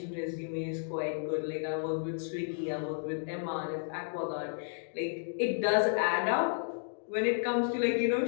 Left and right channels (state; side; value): silent; right; digital silence